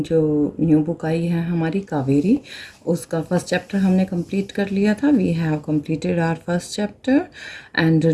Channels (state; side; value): identical; both; correlation 1.00